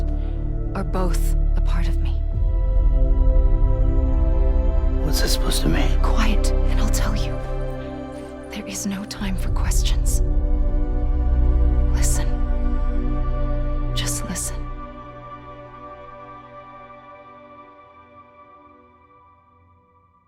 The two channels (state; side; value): identical; both; correlation 1.00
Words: are both a part of me. What's this supposed to mean? Quiet, and I'll tell you. There is no time for questions. Listen. Just listen.